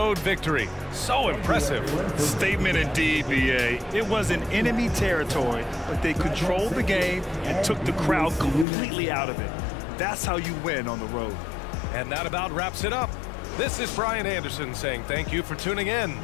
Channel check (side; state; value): right; drops out; at 8.7 s